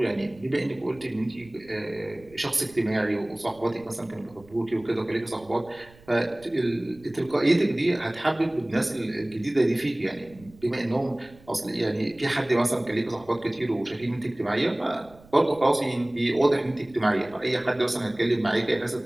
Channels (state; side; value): noise; right; rumble, 25 dB below the sound